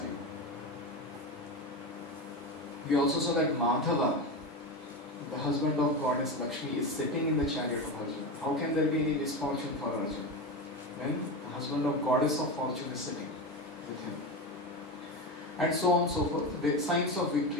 We also saw that Madhava, the husband of goddess Lakshmi, is sitting in the chariot of Arjuna. How can there be any misfortune for Arjuna when the husband of goddess of fortune is sitting with him? And so on and so forth. The signs of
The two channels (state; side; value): normal; both; correlation 0.20